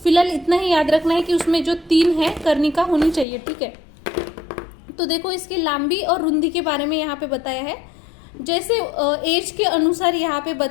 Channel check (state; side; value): drops out; right; at 3.2 s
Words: फिलहाल इतना ही याद रखना है कि उसमें जो 3 है कर्णिका होनी चाहिए। ठीक है, तो देखो इसकी लांबी और रुंदी के बारे में यहाँ पे बताया है, जैसे एज के अनुसार यहाँ पे